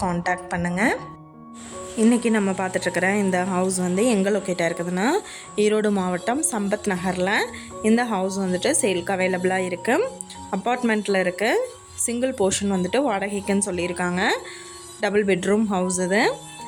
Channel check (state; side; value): identical; both; correlation 1.00